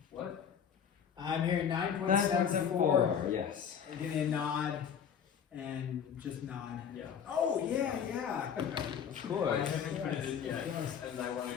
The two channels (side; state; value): right; quieter; 7.7 dB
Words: What? I'm hearing 9.74. 9.74. Yes. Give me a nod and just nod. Yeah. Oh, yeah, yeah. Of I course. haven't put it in yet, Yes. and I want to